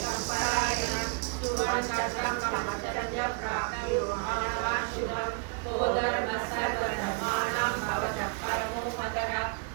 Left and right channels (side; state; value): left; quieter; 35.7 dB